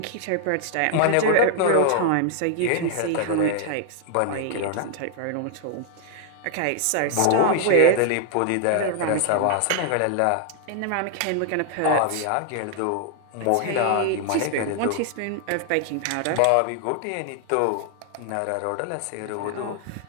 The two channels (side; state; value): both; different; correlation 0.00